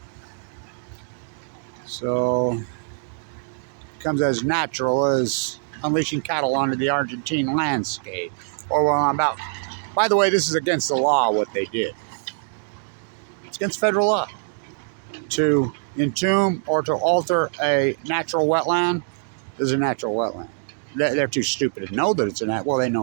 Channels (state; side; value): silent; left; 63 dB below the other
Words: So it becomes as natural as unleashing cattle onto the Argentine landscape. Or well, about. By the way, this is against the law. What they did. It's against federal law to entomb or to alter a natural wetland. Is a natural wetland. They're too stupid to know that it's a nat. Well, they